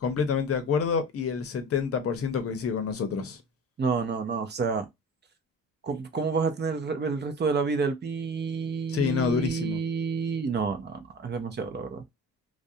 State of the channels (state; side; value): normal; both; correlation 0.37